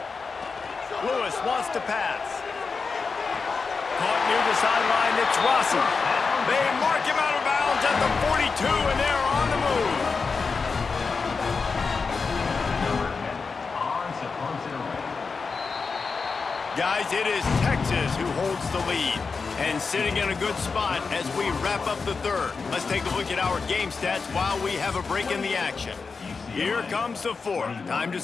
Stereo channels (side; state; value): right; quieter; 4.8 dB